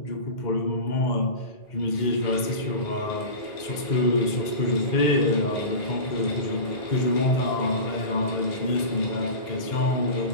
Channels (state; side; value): late; right; 2.1 ms